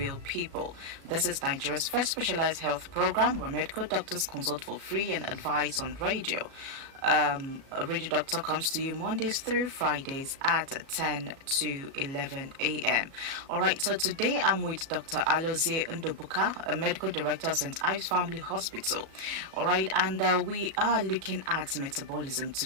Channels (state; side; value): late; left; 37 ms